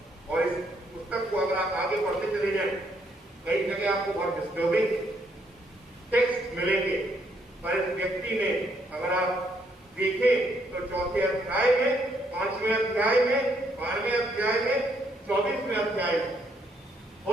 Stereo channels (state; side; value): normal; both; correlation 0.72